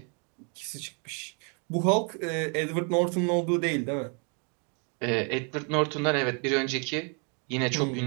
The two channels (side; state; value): left; quieter; 37.2 dB